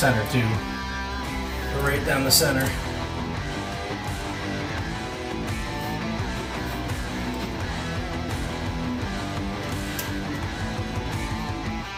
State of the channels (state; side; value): identical; both; correlation 1.00